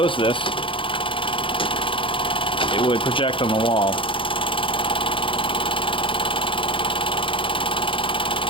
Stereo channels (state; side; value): late; right; 0.25 ms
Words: this, it would project on the wall.